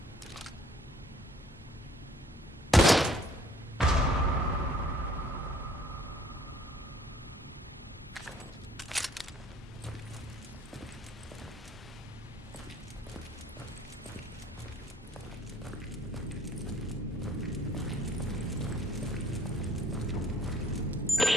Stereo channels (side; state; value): both; normal; correlation 0.58